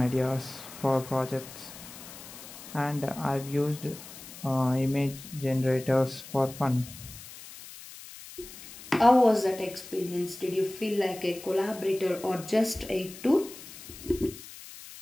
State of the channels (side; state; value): left; noise; hiss, 15 dB below the sound